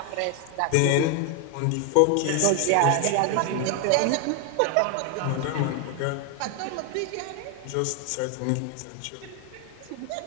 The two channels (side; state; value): both; different; correlation 0.01